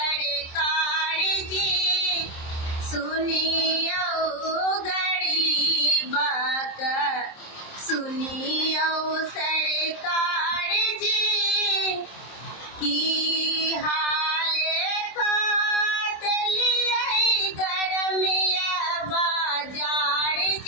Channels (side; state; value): right; late; 26 ms